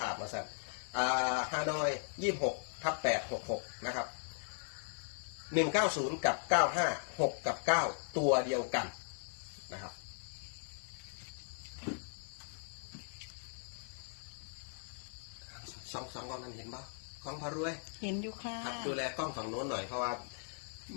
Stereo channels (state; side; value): silent; right; 52 dB below the other